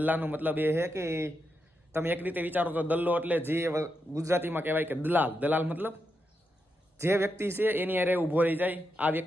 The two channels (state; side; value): normal; both; correlation 0.85